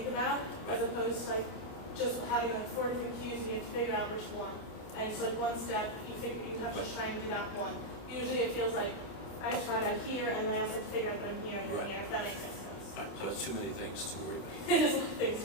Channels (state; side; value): late; right; 28 ms